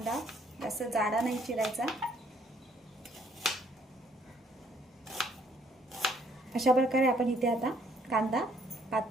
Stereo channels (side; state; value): both; normal; correlation 0.65